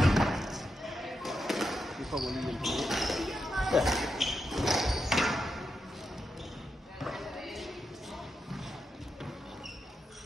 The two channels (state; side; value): normal; both; correlation 0.86